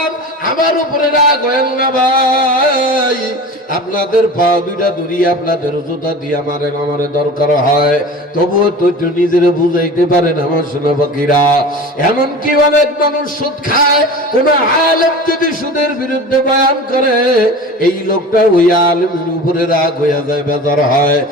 আমার উপরে রাগ হয়েন না ভাই। আপনাদের পা 2টা ধরিয়ে আপনাদের জুতা দিয়ে আমারে দরকার হয়, তবুও তো নিজের বুঝাইতে পারেন আমার সোনা পাখিরা। এমনকি অনেক মানুষ সুদ খায়, কোন আলেম যদি সুদের বিরুদ্ধে বয়ান করে, এই লোকটা ওই আলেমের উপরে রাগ হইয়া যায়, বেজার হয়।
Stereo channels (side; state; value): both; normal; correlation 0.35